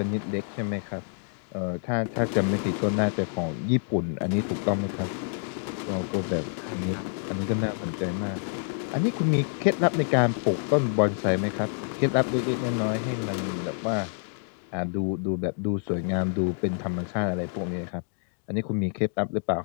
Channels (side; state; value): right; silent; digital silence